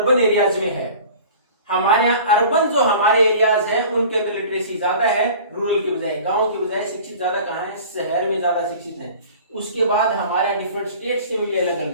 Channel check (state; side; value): inverted; both; correlation -0.43